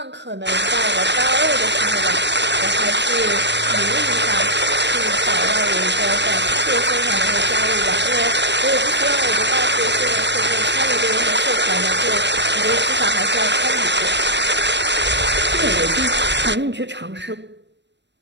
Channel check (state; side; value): late; left; 0.51 ms